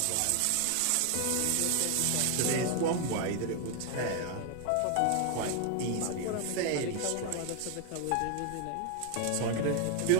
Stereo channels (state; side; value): different; both; correlation 0.00